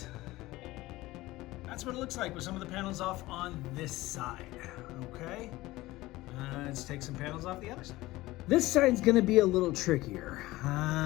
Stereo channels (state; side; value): quieter; right; 18.4 dB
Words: That's what it looks like with some of the panels off on this side, okay? Let's take some panels off the other side. This side's gonna be a little trickier